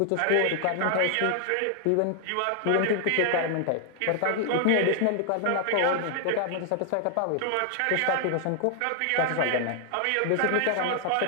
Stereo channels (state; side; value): different; both; correlation 0.00